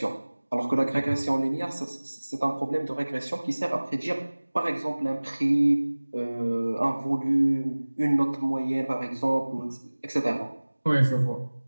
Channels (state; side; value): inverted; both; correlation -1.00